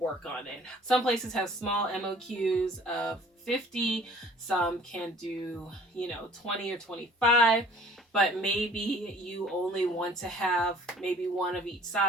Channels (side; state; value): both; normal; correlation 0.52